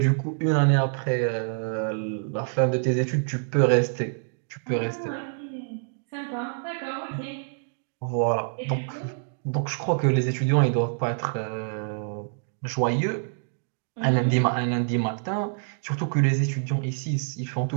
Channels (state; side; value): silent; left; digital silence